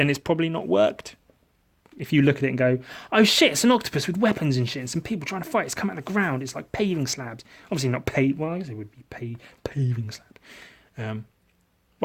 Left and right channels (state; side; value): identical; both; correlation 1.00